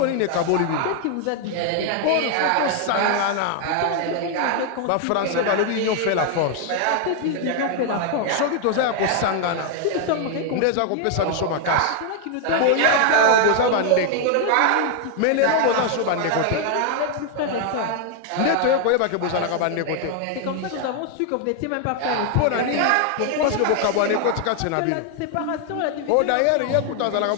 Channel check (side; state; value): both; different; correlation 0.00